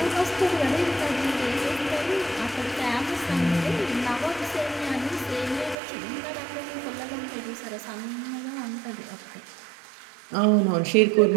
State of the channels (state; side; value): drops out; left; at 5.8 s